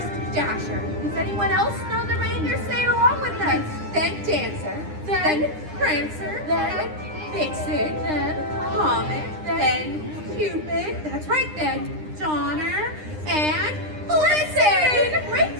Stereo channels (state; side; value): late; left; 9.8 ms